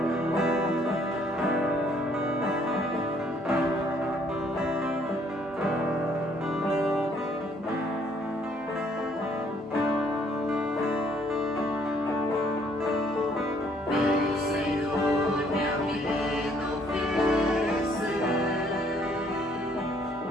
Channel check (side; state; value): both; normal; correlation 0.64